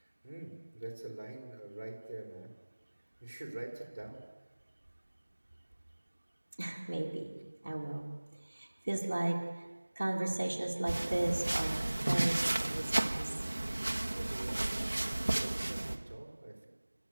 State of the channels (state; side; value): inverted; both; correlation -1.00